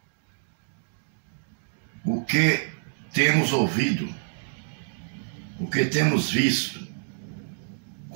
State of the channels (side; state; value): left; silent; digital silence